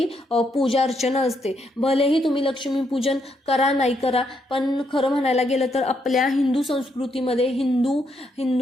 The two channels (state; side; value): normal; both; correlation 0.77